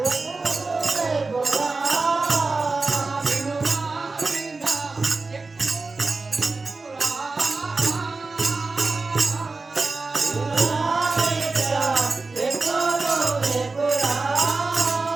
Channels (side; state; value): left; quieter; 3.8 dB